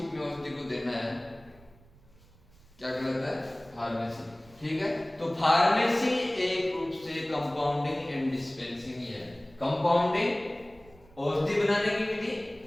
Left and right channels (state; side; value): noise; right; rumble, 26 dB below the sound